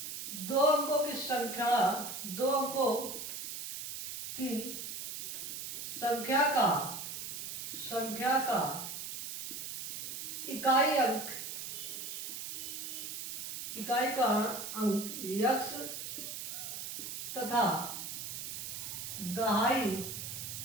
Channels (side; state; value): right; noise; hiss, 6 dB below the sound